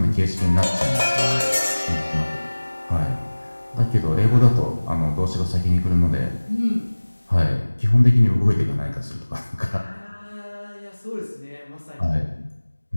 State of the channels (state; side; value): inverted; both; correlation -1.00